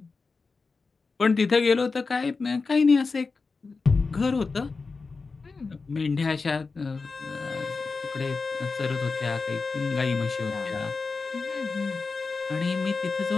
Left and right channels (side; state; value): right; quieter; 4.3 dB